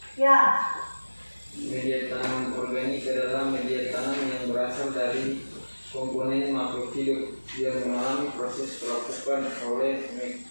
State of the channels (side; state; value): both; inverted; correlation -1.00